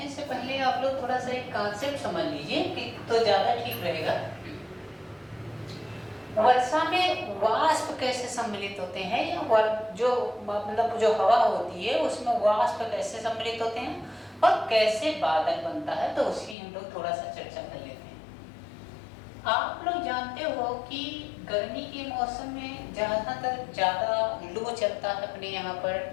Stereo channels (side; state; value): right; drops out; at 16.6 s